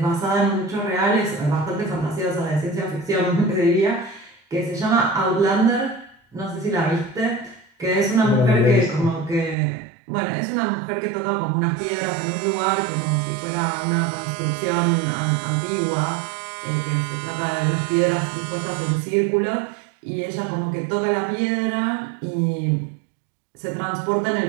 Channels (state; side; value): drops out; left; at 9.6 s